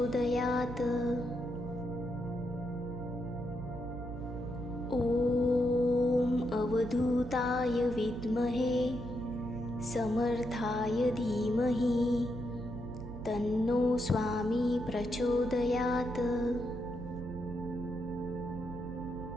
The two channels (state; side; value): noise; right; hum, 10 dB below the sound